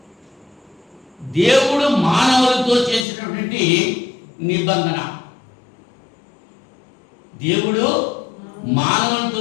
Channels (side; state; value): right; drops out; at 3.1 s